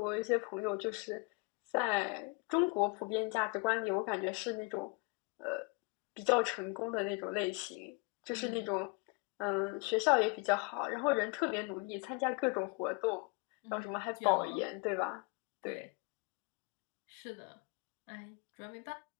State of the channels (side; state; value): right; quieter; 29.8 dB